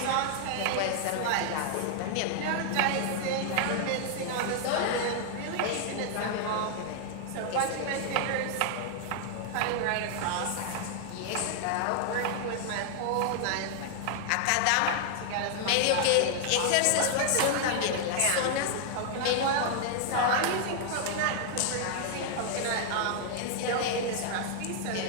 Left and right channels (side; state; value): both; different; correlation 0.00